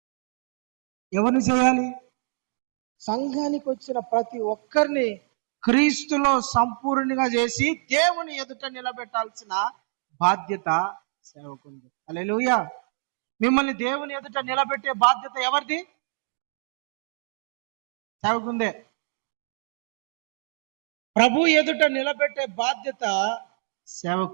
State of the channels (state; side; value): silent; left; digital silence